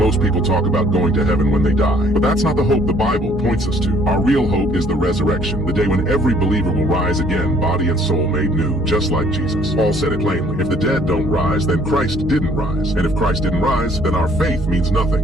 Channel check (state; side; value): normal; both; correlation 0.61